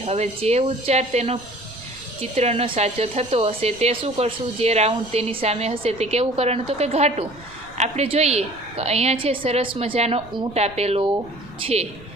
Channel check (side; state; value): right; noise; rumble, 21 dB below the sound